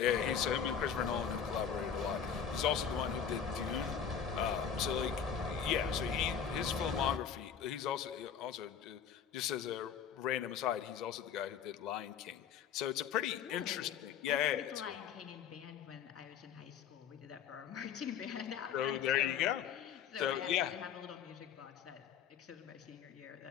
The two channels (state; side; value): quieter; right; 7.9 dB